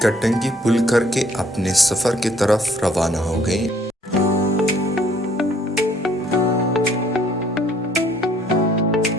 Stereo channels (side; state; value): both; normal; correlation 0.61